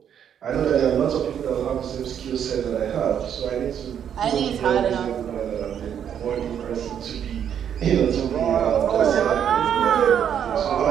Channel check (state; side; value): quieter; left; 8.9 dB